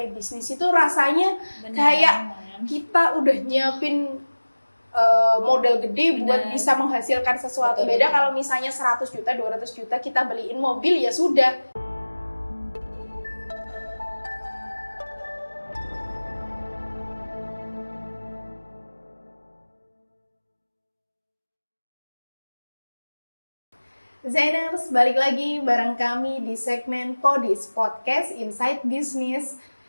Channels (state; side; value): inverted; both; correlation -1.00